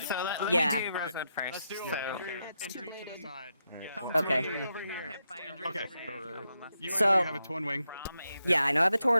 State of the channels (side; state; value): both; inverted; correlation -0.84